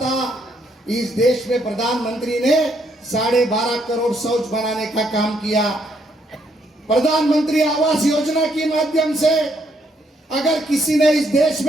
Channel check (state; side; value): normal; both; correlation 0.72